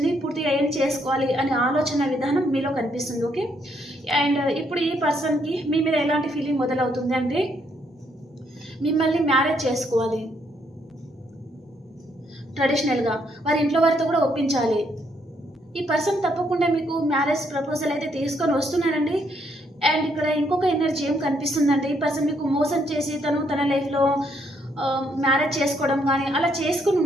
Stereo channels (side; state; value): both; normal; correlation 0.72